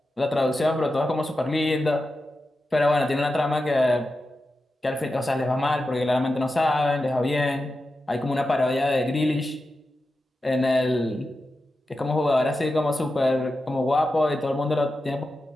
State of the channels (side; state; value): both; normal; correlation 0.91